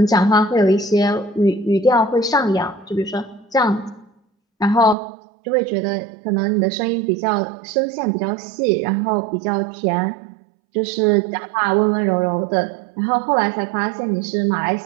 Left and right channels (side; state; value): left; drops out; at 5.0 s